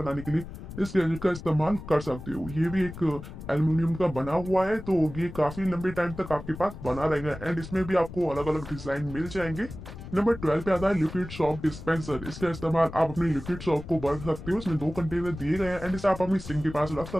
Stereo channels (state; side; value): noise; left; rumble, 12 dB below the sound